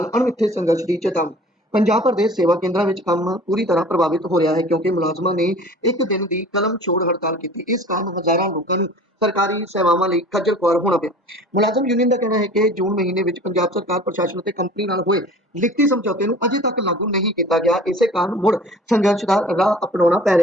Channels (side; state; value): both; normal; correlation 0.44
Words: ਅਣਮਿੱਥੇ ਸੰਘਰਸ਼ ਦੀ ਚੇਤਾਵਨੀ। ਪੰਜਾਬ ਭਰ ਦੇ ਸੇਵਾ ਕੇਂਦਰਾਂ ਵਿੱਚ ਕੰਮ ਪੂਰੀ ਤਰ੍ਹਾਂ ਪ੍ਰਭਾਵਿਤ ਹੋ ਰਿਹਾ ਹੈ ਕਿਉਂਕਿ ਮੁਲਾਜ਼ਮਾਂ ਨੇ ਇੱਕ ਦਿਨ ਦੀ ਕਲਮ ਛੋੜ ਹੜਤਾਲ ਕੀਤੀ। ਇਸ ਕਾਰਨ ਹਜ਼ਾਰਾਂ ਲੋਕਾਂ ਨੂੰ ਸਰਕਾਰੀ ਸੇਵਾਵਾਂ ਲਈ ਖੱਜਲ ਖੁਆਰ ਹੋਣਾ ਪਿਆ। ਮੁਲਾਜ਼ਮ ਯੂਨੀਅਨ ਦਾ ਕਹਿਣਾ ਹੈ ਕਿ ਜੂਨ ਮਹੀਨੇ ਵਿੱਚ ਪੰਜਾਬ ਸਰਕਾਰ ਪ੍ਰਸ਼ਾਸਨ ਅਤੇ ਕੰਪਨੀ ਨਾਲ ਹੋਏ ਲਿਖਤੀ ਸਮਝੌਤੇ ਨੂੰ ਅਜੇ ਤੱਕ ਲਾਗੂ ਨਹੀਂ ਕੀਤਾ ਗਿਆ। ਇਸੇ ਕਾਰਨ ਮੁੜ ਸੰਘਰਸ਼ ਦਾ ਰਾਹ ਅਪਣਾਉਣਾ ਪੈ